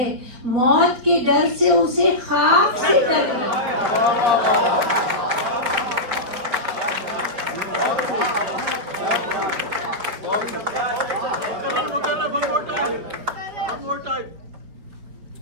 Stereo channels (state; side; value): late; left; 5.0 ms